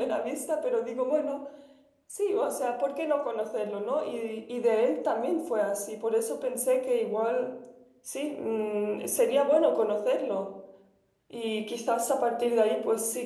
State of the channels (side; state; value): both; identical; correlation 1.00